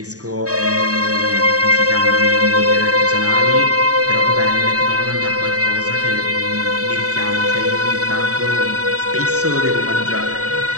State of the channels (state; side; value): late; left; 0.66 ms